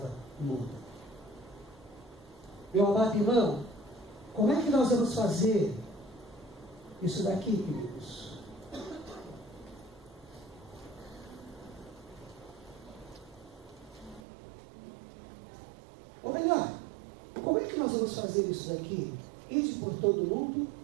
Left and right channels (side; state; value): left; drops out; at 14.2 s